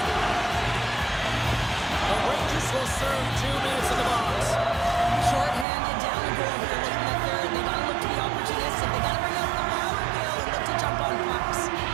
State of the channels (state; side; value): drops out; left; at 5.7 s